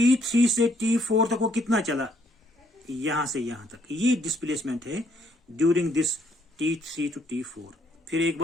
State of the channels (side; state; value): both; normal; correlation 0.69